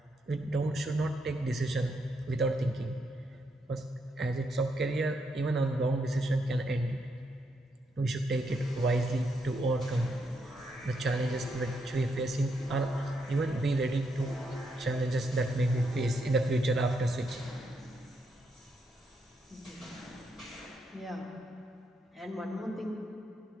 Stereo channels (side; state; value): both; normal; correlation 0.79